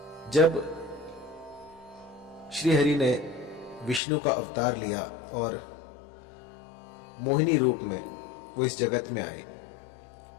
जब श्री हरि ने विष्णु का अवतार लिया और मोहिनी रूप में वो इस जगत में आए,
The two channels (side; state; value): right; drops out; at 4.0 s